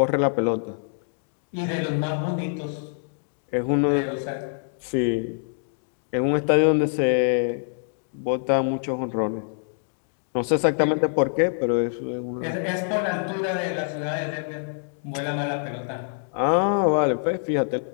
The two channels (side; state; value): right; silent; digital silence